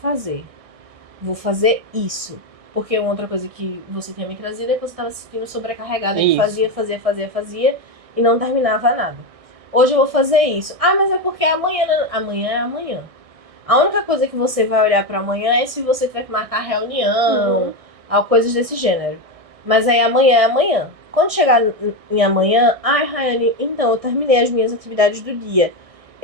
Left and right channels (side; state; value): left; late; 1.6 ms